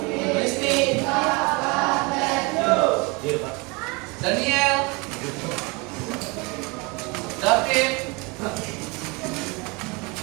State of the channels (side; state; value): left; quieter; 27.7 dB